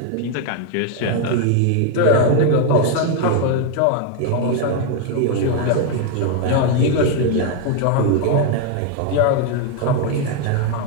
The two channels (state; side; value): different; both; correlation 0.01